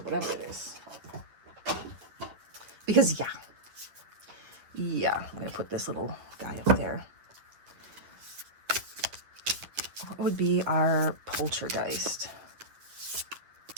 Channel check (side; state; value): left; late; 9.4 ms